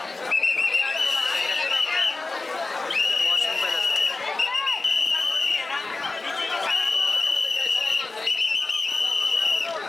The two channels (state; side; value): quieter; right; 3.4 dB